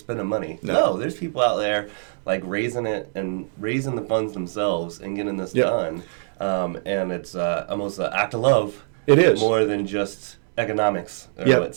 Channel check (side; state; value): left; silent; digital silence